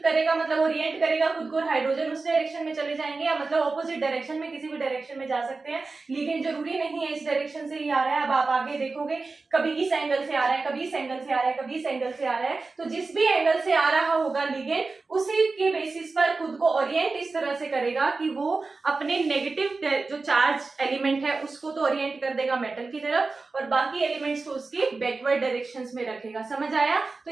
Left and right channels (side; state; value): left; quieter; 3.9 dB